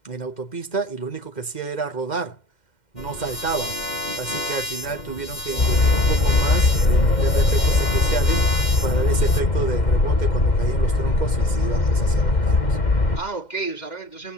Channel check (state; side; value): late; right; 2.1 ms